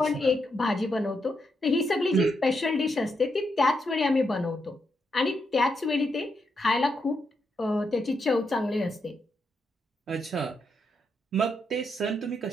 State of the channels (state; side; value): normal; both; correlation 0.81